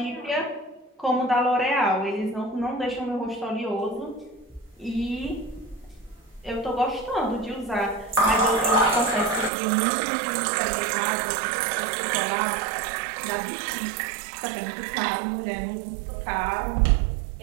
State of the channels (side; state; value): left; drops out; at 9.5 s